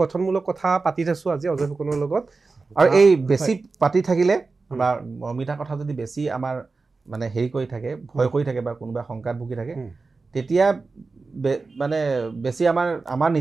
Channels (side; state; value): left; quieter; 4.0 dB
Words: গঠনমূলক কথা পাতি থৈছোঁ আজি অজয় ফুকনৰ লগত আৰু এই বেছি পাতি থাকিলে বা মমিতা কথা যদি বেছি আমাৰ মানে হেৰি কৰি থাকে ভয় কৰি থাকে বা কোনোবা শংকাত ভুগি থাকে তেতিয়া মানে বেছি আমাৰ